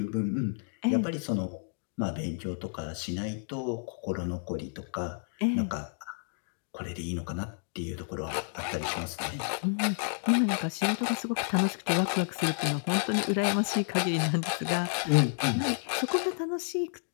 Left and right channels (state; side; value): silent; right; digital silence